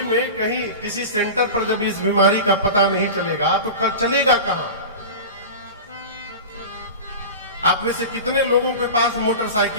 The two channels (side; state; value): both; inverted; correlation -0.30